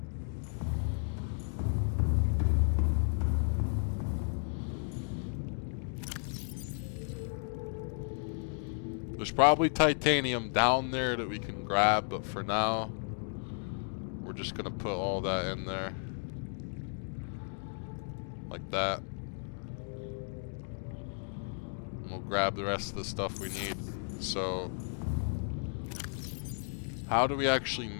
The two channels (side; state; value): right; silent; 55 dB below the other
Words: There's probably titanium down there that we can grab, but for now, we're just gonna put all that in there. Like that. And we'll grab the rest of the stuff we need. So, how do we actually